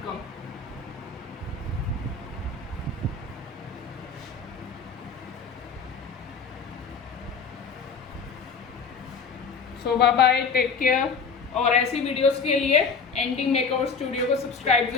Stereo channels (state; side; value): quieter; right; 5.2 dB